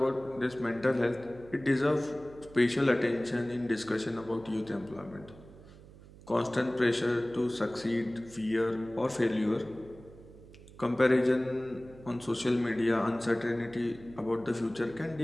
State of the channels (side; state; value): right; noise; hum, 20 dB below the sound